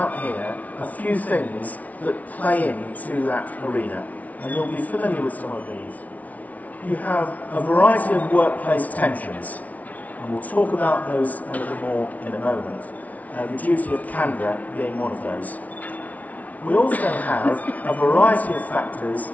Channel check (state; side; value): late; right; 0.071 ms